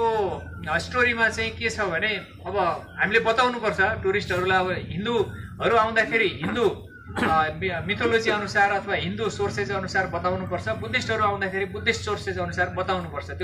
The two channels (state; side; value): identical; both; correlation 1.00